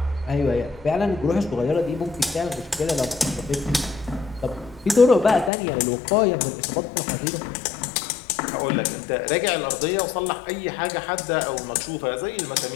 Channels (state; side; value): drops out; right; at 5.5 s